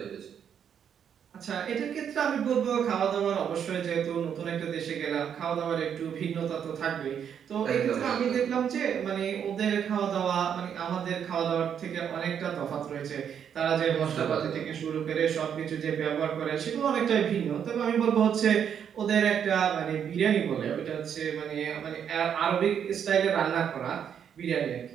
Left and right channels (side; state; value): left; quieter; 8.3 dB